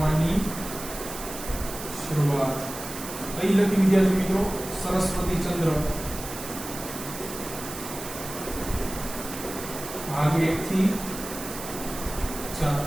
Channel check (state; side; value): noise; right; hiss, 10 dB below the sound